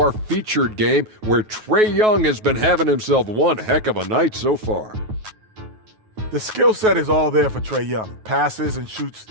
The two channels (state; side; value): late; left; 9.3 ms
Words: featured game where Trae Young has been having himself one heck of a night so far. The skill set is all there for Trae Young. Passes and shoots